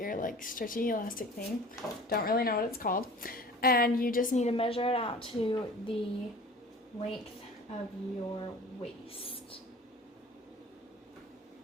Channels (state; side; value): normal; both; correlation 0.42